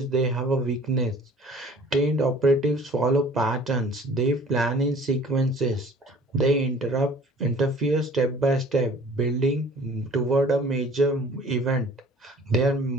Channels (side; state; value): both; normal; correlation 0.49